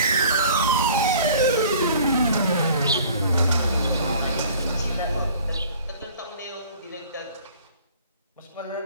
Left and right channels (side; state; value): both; inverted; correlation -0.49